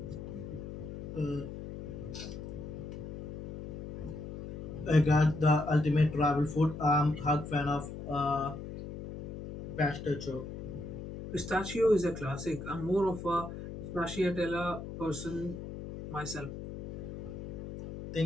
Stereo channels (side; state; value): left; noise; hum, 9 dB below the sound